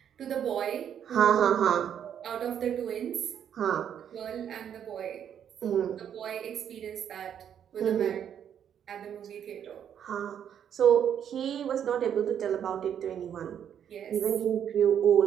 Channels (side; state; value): left; quieter; 9.0 dB